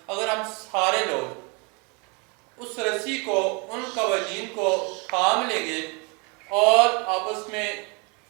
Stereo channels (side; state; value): left; quieter; 31.6 dB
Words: اگر ہم سارے لوگ اس رسی کو، ان قوانین کو تھام لیں گے اور آپس میں